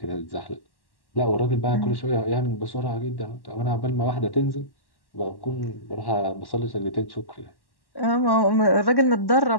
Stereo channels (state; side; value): late; right; 1.1 ms